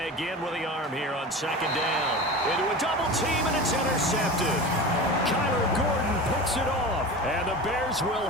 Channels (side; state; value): both; normal; correlation 0.31